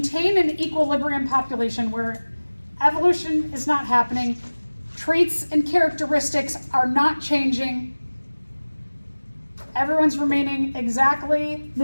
an equilibrium population where evolution is not happening, traits and characteristics are not changing, everyone's remaining exactly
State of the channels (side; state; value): both; inverted; correlation -1.00